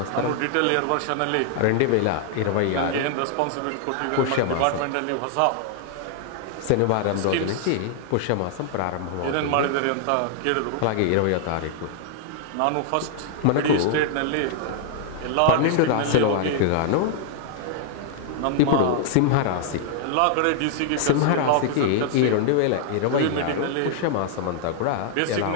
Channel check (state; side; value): different; both; correlation -0.01